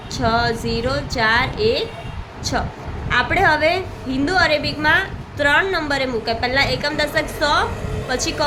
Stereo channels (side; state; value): both; identical; correlation 1.00